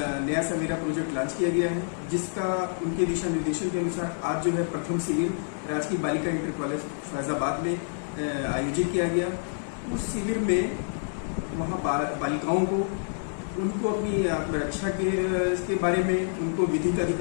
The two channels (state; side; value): silent; right; digital silence